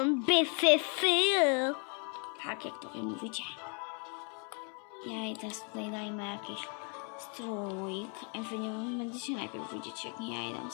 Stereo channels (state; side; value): quieter; right; 38.8 dB